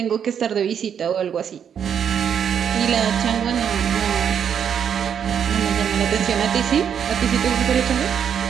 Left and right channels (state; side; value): quieter; left; 8.1 dB